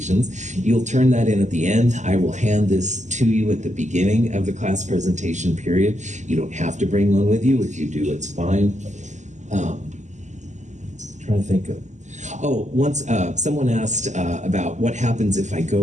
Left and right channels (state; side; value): late; left; 0.34 ms